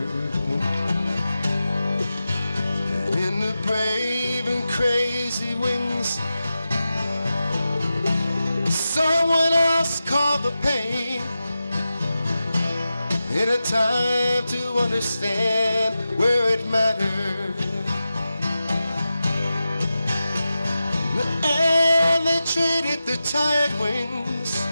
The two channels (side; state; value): both; inverted; correlation -0.92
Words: And in the brave and crazy wings, someone else called the pain, in a time to understand where it mattered. And they traded their tired wings.